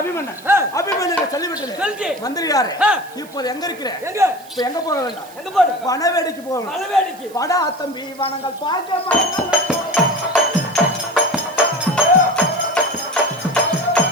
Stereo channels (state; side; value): noise; right; hiss, 23 dB below the sound